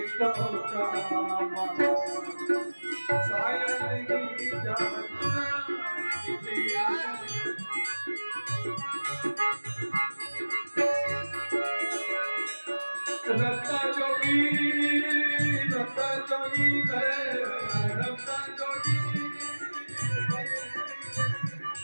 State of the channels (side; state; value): both; inverted; correlation -1.00